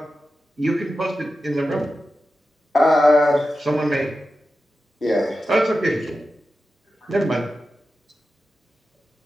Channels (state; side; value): normal; both; correlation 0.92